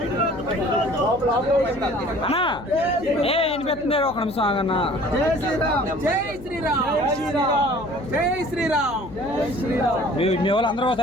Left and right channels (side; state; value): left; noise; hum, 17 dB below the sound